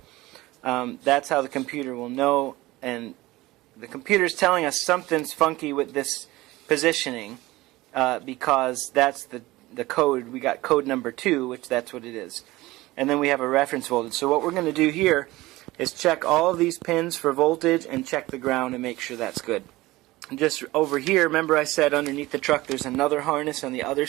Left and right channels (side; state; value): left; quieter; 19.0 dB